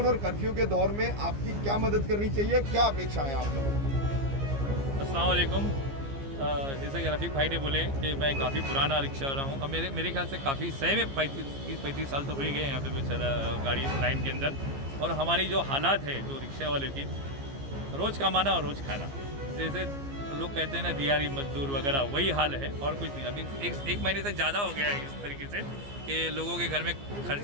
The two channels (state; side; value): late; left; 15 ms